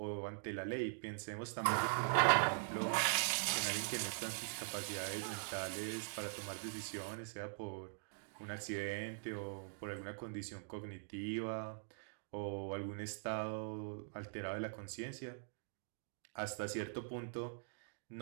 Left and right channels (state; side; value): silent; left; digital silence